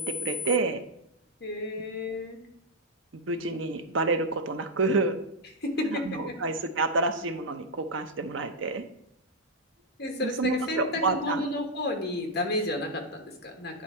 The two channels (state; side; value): normal; both; correlation -0.01